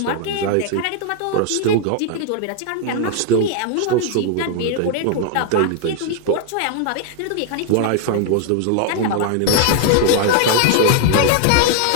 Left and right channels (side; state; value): both; different; correlation 0.00